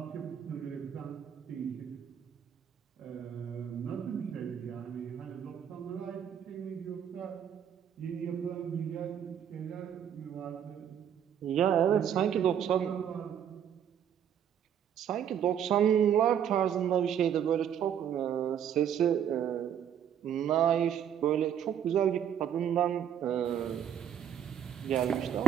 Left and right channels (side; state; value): left; quieter; 9.2 dB